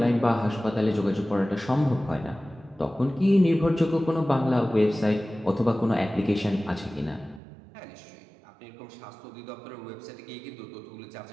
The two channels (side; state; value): left; drops out; at 7.4 s